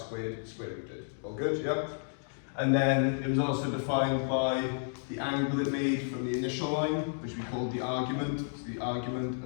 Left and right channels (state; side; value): silent; right; digital silence